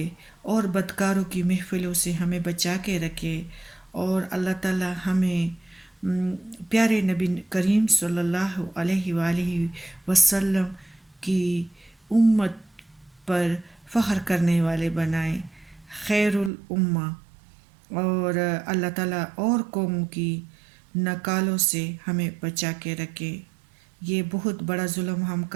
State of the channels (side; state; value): left; drops out; at 16.5 s